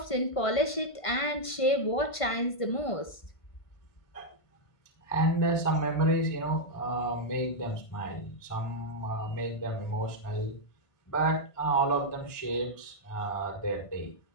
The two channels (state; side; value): late; right; 1.5 ms